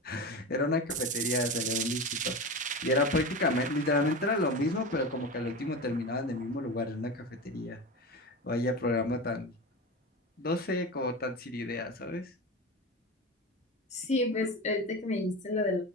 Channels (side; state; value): both; normal; correlation 0.24